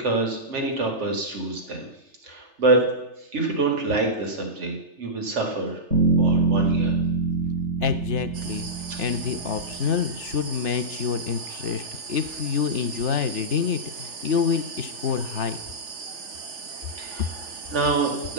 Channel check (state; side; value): late; left; 3.4 ms